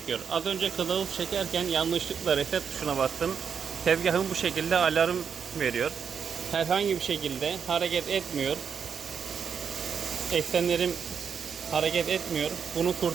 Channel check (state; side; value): quieter; left; 6.9 dB